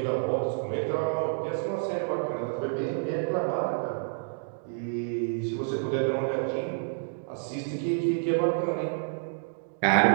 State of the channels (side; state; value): left; silent; digital silence